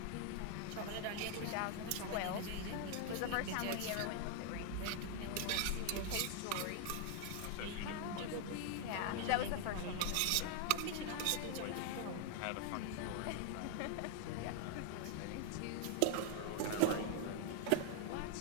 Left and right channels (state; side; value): different; both; correlation 0.00